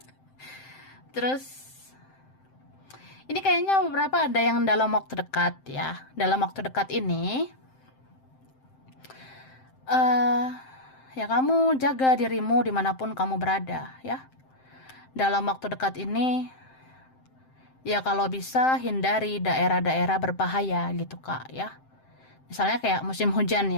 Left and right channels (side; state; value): right; late; 7.7 ms